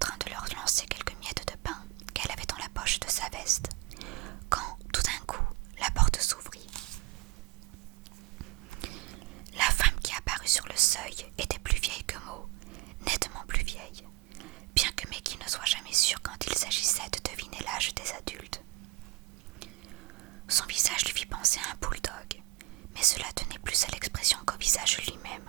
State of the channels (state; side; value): quieter; left; 20.9 dB